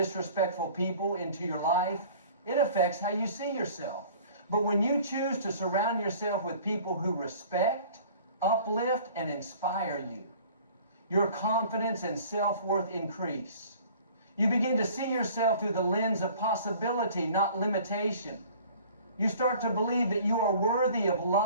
people into your life, it affects how you see yourself. But when you choose to surround yourself with people who respect, uplift, and inspire you, your confidence and self-worth increase. You begin to see yourself through the lens of possibility, not limitation. You start to believe that you are worthy of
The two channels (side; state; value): both; inverted; correlation -0.48